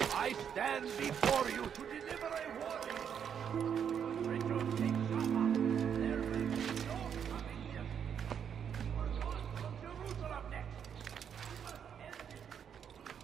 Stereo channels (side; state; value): left; quieter; 8.0 dB